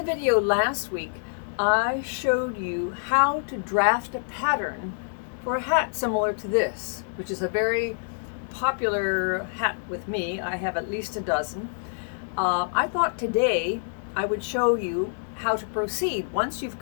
video last week, I showed you how to draft a pattern for a hat similar to this, which is a very popular hat with me. I have at least a dozen. I thought today I would show you how to proceed once you've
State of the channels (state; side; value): silent; right; digital silence